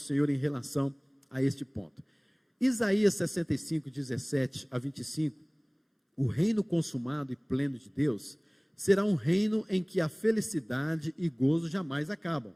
em relação a este ponto. Isaías 65, 17 a 25, o reino consumado e pleno de Deus será um reino em que a felicidade e gozo jamais acabam,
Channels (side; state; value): both; identical; correlation 1.00